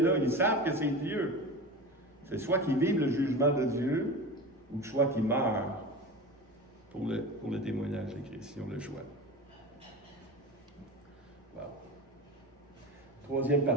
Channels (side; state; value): both; normal; correlation 0.29